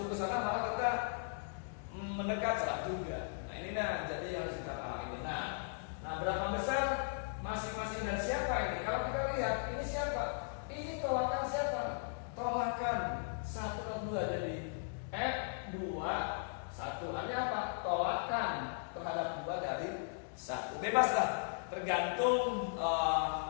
ke sana, malah kita mendekat, salah juga. Nah ini jadi harus kita pahami. Nah berapa besar masing-masing dan siapa ini? Kalau kita lihat ini siapa? Ini tolakan siapa? Tolakan 1 dan 2. Jadi F2 1 artinya apa? Tolakan terhadap 2 dari 1. Bebas lah, tergantung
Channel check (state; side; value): silent; right; digital silence